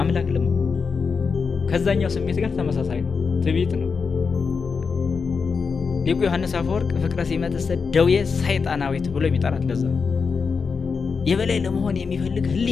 አምላክ ለምን። ከዛኛው ስሜት ጋር ተመሳሳይ ነው፣ ትዕቢት ነው። ሊቁ ዮሐንስ አፈወርቅ ፍቅረ ሲመትሰ ደዌ ሰይጣናዊት ብሎ የሚጠራት ለዛ የበላይ ለመሆን የሚፈልግ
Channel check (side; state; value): right; quieter; 5.3 dB